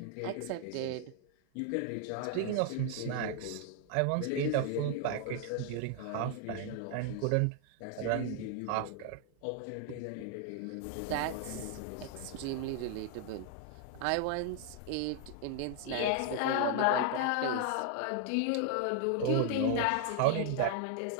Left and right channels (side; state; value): both; different; correlation 0.00